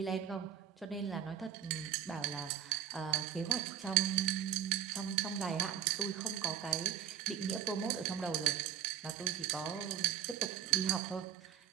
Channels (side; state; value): left; quieter; 9.6 dB